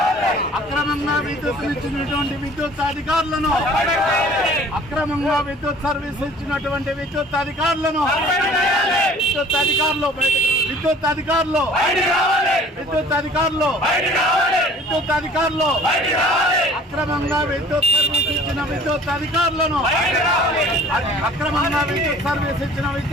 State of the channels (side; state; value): both; normal; correlation 0.50